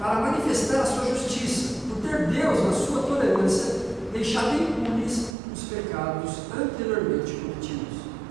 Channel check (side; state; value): left; drops out; at 5.4 s